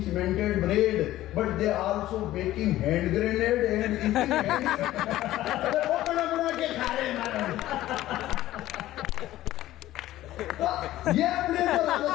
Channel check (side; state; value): right; quieter; 14.9 dB